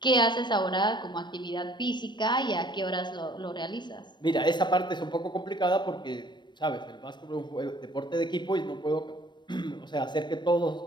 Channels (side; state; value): right; late; 0.22 ms